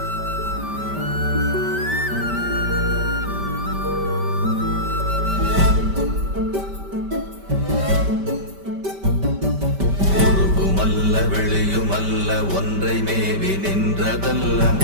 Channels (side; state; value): left; late; 5.1 ms